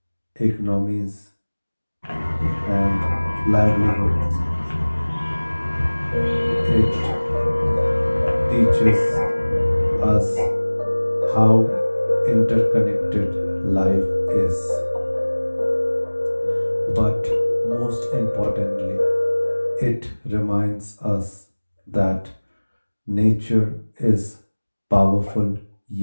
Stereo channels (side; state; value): both; inverted; correlation -1.00